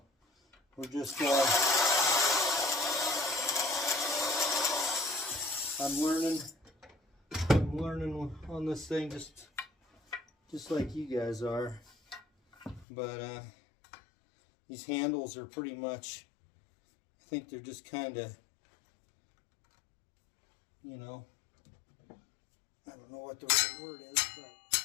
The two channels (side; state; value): right; drops out; at 12.9 s